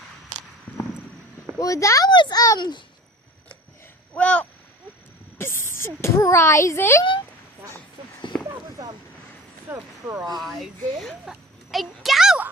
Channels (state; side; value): normal; both; correlation 0.39